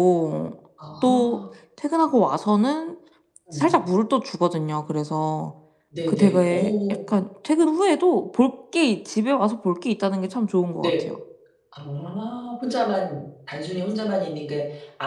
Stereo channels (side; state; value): both; identical; correlation 1.00